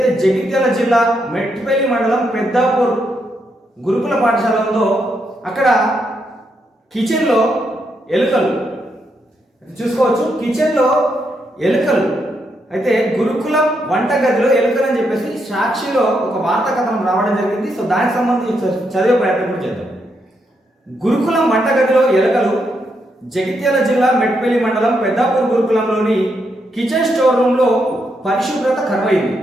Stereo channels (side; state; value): both; normal; correlation 0.80